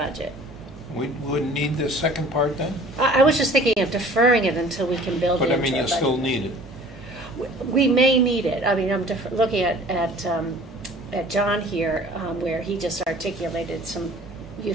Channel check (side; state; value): both; normal; correlation 0.48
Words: We wouldn't need the second part then? I was just thinking of deferring it until we can build it into our budget. But I mean, you still need it. We may need it. I mean, I'm looking at John here, where he just articulated some